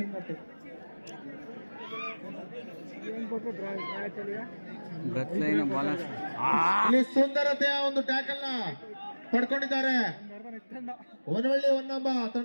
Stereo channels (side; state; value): both; inverted; correlation -1.00